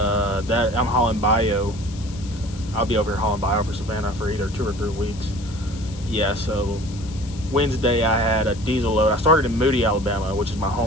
I'm hauling bio. I'll be over here hauling bio for Savannah for either 2 or 3 weeks. Yeah, so Wednesday I had a diesel load. I started in Moody, Alabama, which is my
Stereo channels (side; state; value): left; noise; hiss, 19 dB below the sound